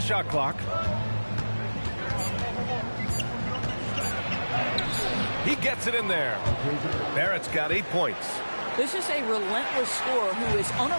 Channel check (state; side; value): inverted; both; correlation -1.00